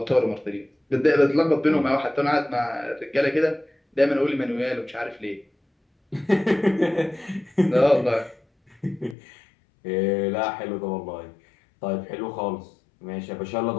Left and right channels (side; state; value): right; drops out; at 9.2 s